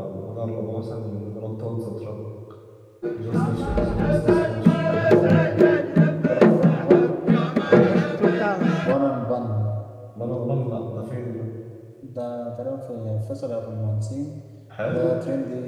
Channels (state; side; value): identical; both; correlation 1.00